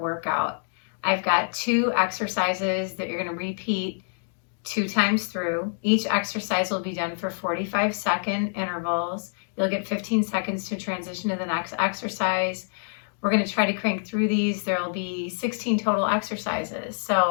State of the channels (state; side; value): silent; right; digital silence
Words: workout. I've got 2 exercises that you're going to repeat 2 times through. Each exercise will be done for 45-second intervals. You'll get 15 seconds to transition to the next exercise. We're going to try to crank through these. There will be 16 total exercises. So